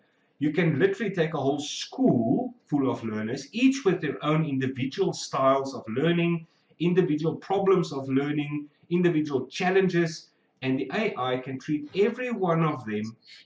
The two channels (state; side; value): identical; both; correlation 1.00